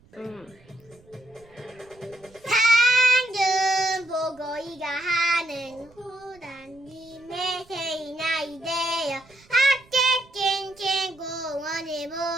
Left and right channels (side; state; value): right; noise; rumble, 28 dB below the sound